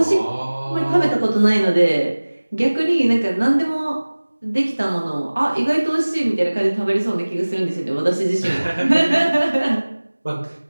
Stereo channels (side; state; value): both; inverted; correlation -1.00